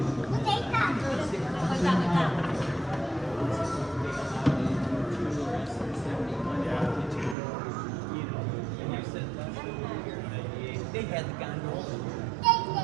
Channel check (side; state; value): left; drops out; at 7.4 s